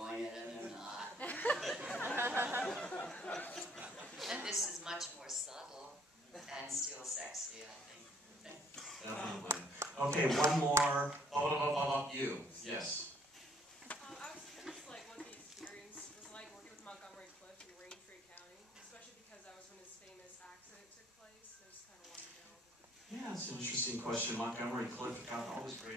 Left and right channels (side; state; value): both; normal; correlation 0.62